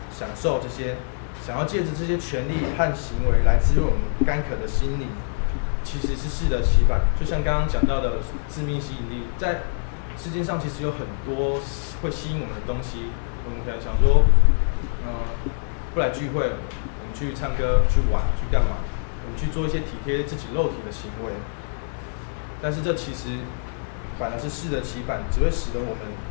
享受这些，想要借着这些权利和行为来滋润我们干渴的心灵，其实是适得其反。就像刚刚讲到的致命吸引力，在世界上其实有很多会吸引我们的东西。我们可能想说，不来聚会，我们去唱歌、去玩、去干嘛？我们去做一些体贴自己肉体的行为。但是这其实反而是适得其反，只会使得我们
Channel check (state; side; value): silent; right; 62 dB below the other